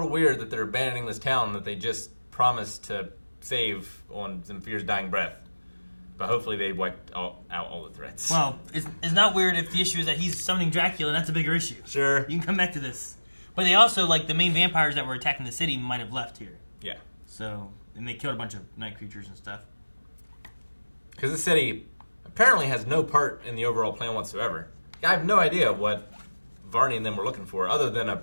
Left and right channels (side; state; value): both; inverted; correlation -1.00